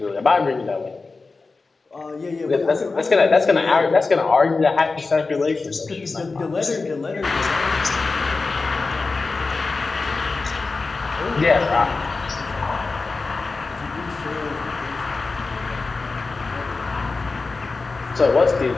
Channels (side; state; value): right; quieter; 3.9 dB